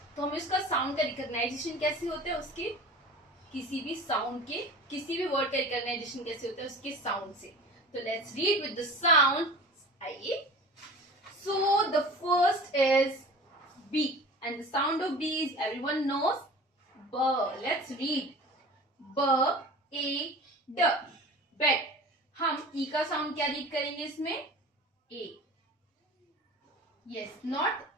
तो हमें उसका साउंड का रिकॉग्नाइजेशन कैसे होता है, उसके किसी भी साउंड के, किसी भी वर्ड का रिकॉग्नाइजेशन कैसे होता है, उसके साउंड से. तो let's read with the sound. आइए. So the first is B, and the sound of B is, everyone knows, B. Let's read. B A D bed. हम E का साउंड क्या रीड करेंगे इसमें, A. Yes, not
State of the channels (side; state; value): both; normal; correlation 0.39